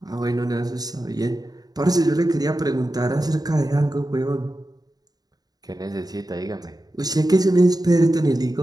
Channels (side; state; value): left; late; 0.19 ms